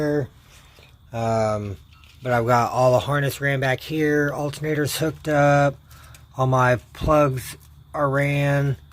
But I've got all the harness ran back here, alternators hooked up, all my plugs are ran,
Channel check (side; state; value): both; identical; correlation 1.00